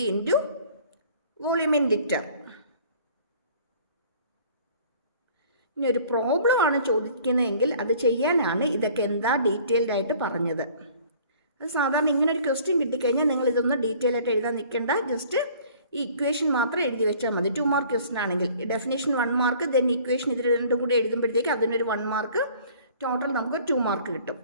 into volume in litre. ഇനി ഒരു പ്രോബ്ലം ആണ് ചോദിക്കുന്നതെങ്കിൽ അത് ചെയ്യാനാണ് ഇതൊക്കെ എന്താ ഡീറ്റെയിൽഡ് ആയിട്ട് പറഞ്ഞത്. അത് സാധാരണ ഇങ്ങനെ ഒരു ക്വസ്റ്റ്യൻ കിട്ടിക്കഴിഞ്ഞാൽ നിങ്ങൾ ഇതൊന്നും ഡീറ്റെയിൽ ആയിട്ട് എഴുതാൻ നിൽക്കേണ്ട. ജസ്റ്റ് ഈ ഇക്വേഷൻ മാത്രം എഴുതി വെച്ചാൽ മതി. 2 മാർക്ക് ക്വസ്റ്റൻ ആണെങ്കിൽ ഡെഫിനേഷൻ 1 മാർക്ക്, ദെൻ ഇക്വേഷൻ ഇത് രണ്ടും കൂടി എഴുതുമ്പോഴത്തേക്ക് അതിനൊരു 1 മാർക്ക്, ടോട്ടൽ നമുക്ക് 2 മാർക്ക് കിട്ടും.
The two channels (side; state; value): both; inverted; correlation -0.52